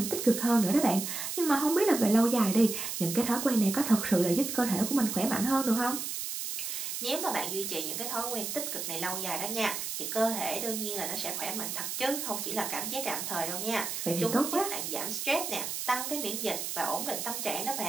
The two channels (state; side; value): noise; right; hiss, 4 dB below the sound